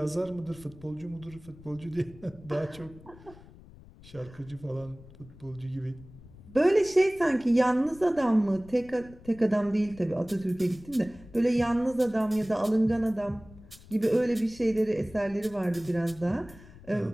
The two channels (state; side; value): noise; left; rumble, 21 dB below the sound